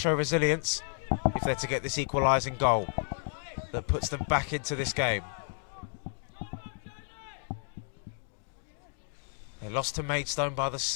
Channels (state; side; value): silent; right; 57 dB below the other